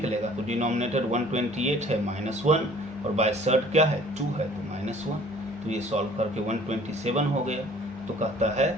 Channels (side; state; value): both; normal; correlation 0.53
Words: तो डिनोमिनेटर 128 है -1, और बाय सर्ड क्या है, 2 है, तो -1। तो ये सॉल्व करके 127 हो गया। तो कहता है